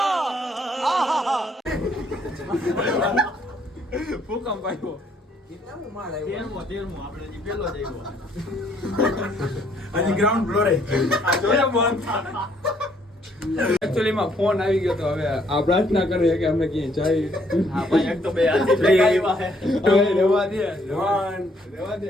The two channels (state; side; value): normal; both; correlation 0.67